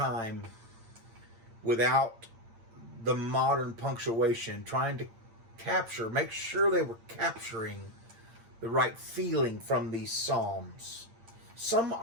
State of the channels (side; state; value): left; late; 8.8 ms